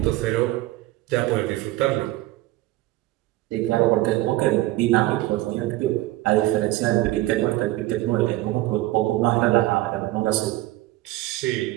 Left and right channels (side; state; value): left; quieter; 17.3 dB